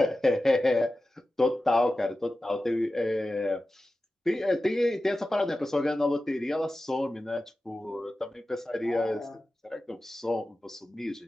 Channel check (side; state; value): both; normal; correlation 0.94